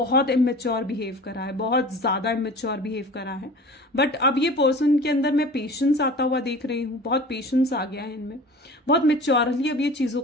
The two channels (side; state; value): both; normal; correlation 0.40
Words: इमेच्योर बिहेव करा है, बहुत ज्यादा इमेच्योर बिहेव करा है, बट अब ये पर्सन के अंदर मैं पेशेंस आता हुआ देख रही हूँ, बहुत पेशेंस आ गया है इनमें, बहुत मेच्योरली अब ये चीजों